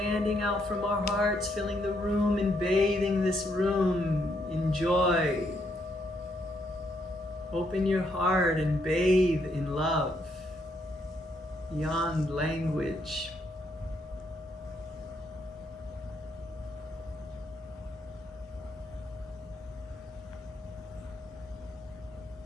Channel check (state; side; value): normal; both; correlation 0.75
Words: out from our hearts, filling the room and bathing this room in joy. Open your heart and bathe in love beyond language.